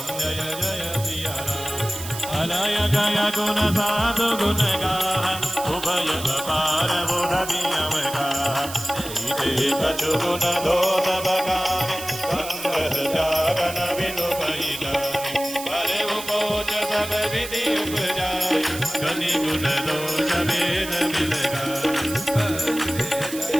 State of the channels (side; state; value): right; noise; hiss, 10 dB below the sound